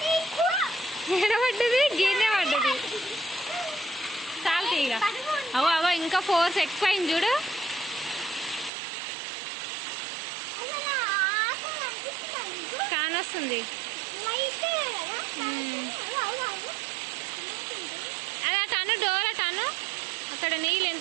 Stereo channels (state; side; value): drops out; left; at 8.7 s